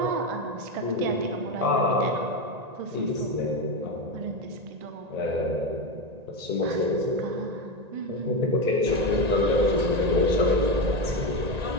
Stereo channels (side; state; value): left; late; 1.9 ms